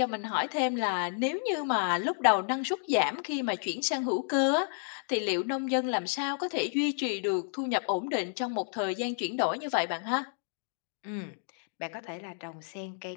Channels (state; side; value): silent; right; digital silence